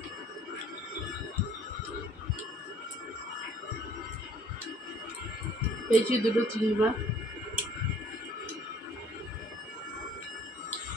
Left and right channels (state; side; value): normal; both; correlation 0.57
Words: পেয়েছি দুটো চিংড়ি মাছ।